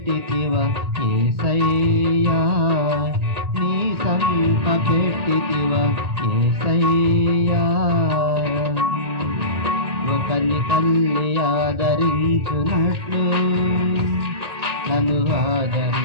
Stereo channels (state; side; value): late; left; 1.8 ms